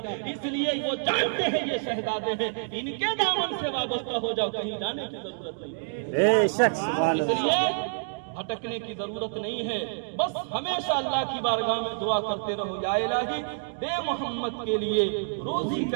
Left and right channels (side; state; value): left; silent; digital silence